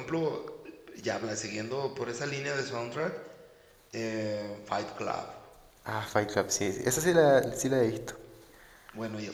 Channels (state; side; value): identical; both; correlation 1.00